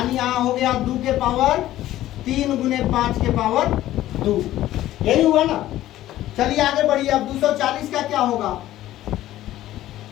यहाँ हो गया 2 के पावर 3 गुने 5 के पावर 2, यही हुआ ना। चलिए आगे बढ़िए, अब 240 का क्या होगा,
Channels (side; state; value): right; quieter; 14.2 dB